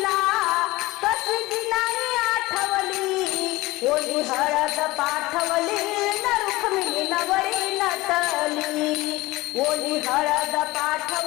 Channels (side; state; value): right; quieter; 20.1 dB